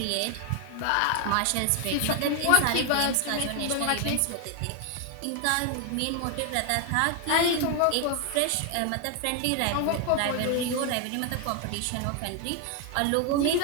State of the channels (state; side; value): different; both; correlation 0.00